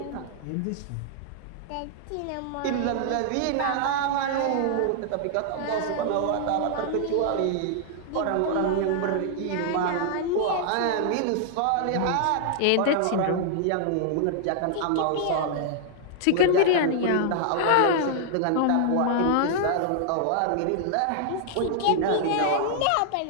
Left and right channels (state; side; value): different; both; correlation -0.01